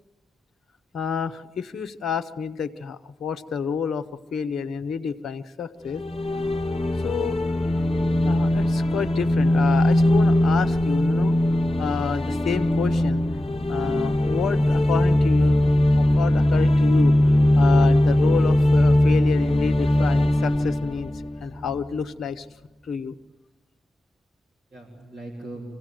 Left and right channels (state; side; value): normal; both; correlation 0.93